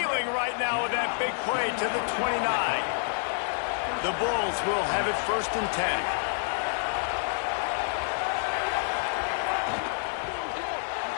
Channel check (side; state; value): right; silent; digital silence